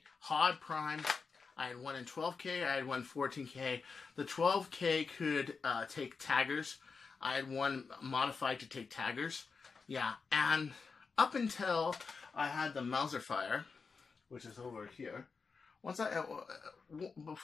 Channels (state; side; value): quieter; right; 4.9 dB